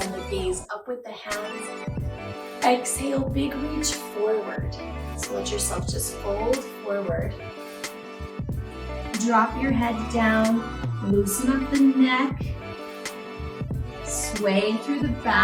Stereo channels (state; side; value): identical; both; correlation 1.00